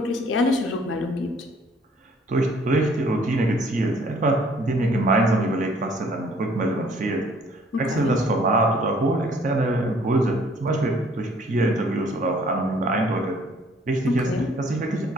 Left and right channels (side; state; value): both; normal; correlation 0.59